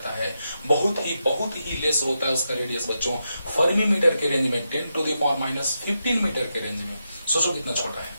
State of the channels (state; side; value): inverted; both; correlation -0.86